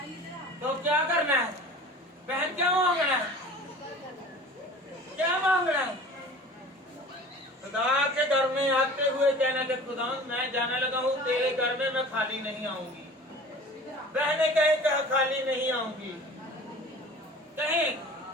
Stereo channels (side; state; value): both; normal; correlation 0.42